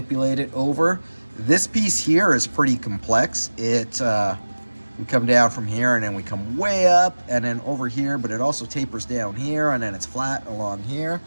it over. This piece here is pretty complex. We come down from here and then we come way up and then over here, but it also tapers down here and then it's flat along here.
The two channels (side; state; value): both; inverted; correlation -1.00